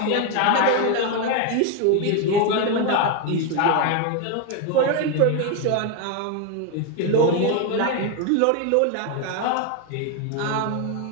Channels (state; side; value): different; both; correlation 0.02